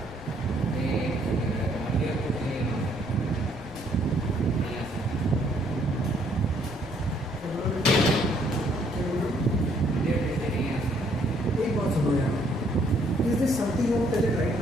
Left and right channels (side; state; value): left; noise; rumble, 17 dB below the sound